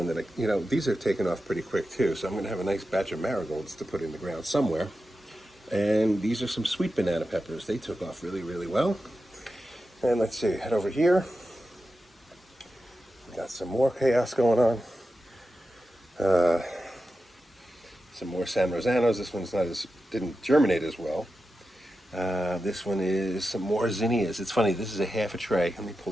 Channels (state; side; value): normal; both; correlation 0.91